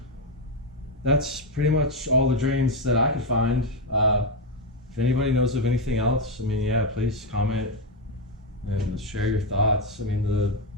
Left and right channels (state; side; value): normal; both; correlation 0.06